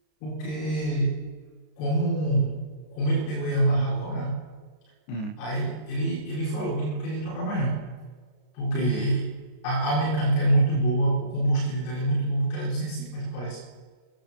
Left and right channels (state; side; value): late; right; 33 ms